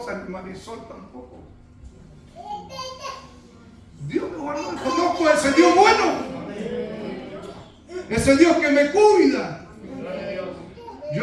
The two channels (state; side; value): identical; both; correlation 1.00